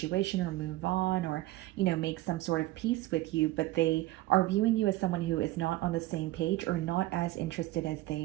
or move on, or, make some sort of peace with you, but they are viewing you as someone who is not on the same page, or not as interested as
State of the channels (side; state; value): left; quieter; 17.4 dB